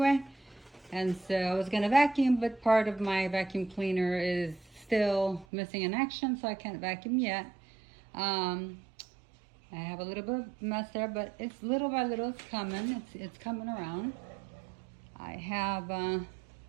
And so I was going to vacuum, but part of my vacuum cleaner is still missing in action, so I can't vacuum yet. I have a little bit of mess there, but it's little by little it's coming. It's coming around. I have a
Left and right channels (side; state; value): left; drops out; at 5.5 s